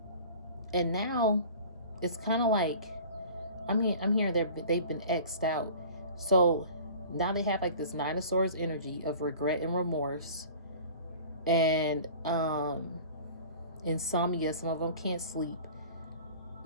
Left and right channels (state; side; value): inverted; both; correlation -0.44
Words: And now it's kind of like, I'm hearing they've been X'd out. So now they have like this Nine of Swords energy of regret and remorse. And insomnia. Some of them can't sleep.